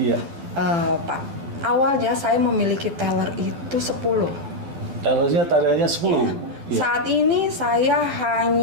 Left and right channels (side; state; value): left; late; 12 ms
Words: Pak. Awalnya saya memiliki teller itu 10. Tellernya tadinya 10. Iya. Saat ini saya